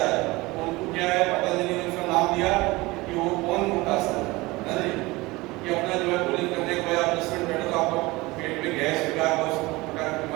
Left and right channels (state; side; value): quieter; left; 21.7 dB